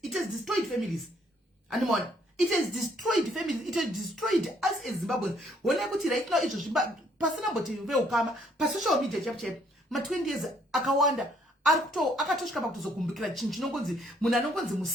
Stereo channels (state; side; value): normal; both; correlation 0.66